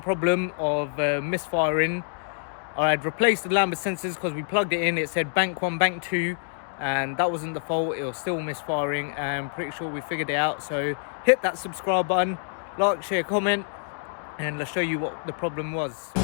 of misfiring. I had replaced the lambda sensors because we plugged it in. It said bank 1, bank 2, and that wasn't the fault. It was still misfiring, and I'm pretty sure we figured it out. So hit that subscribe button, like, share, comment, and let's show you what the problem was.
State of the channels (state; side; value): silent; right; 61 dB below the other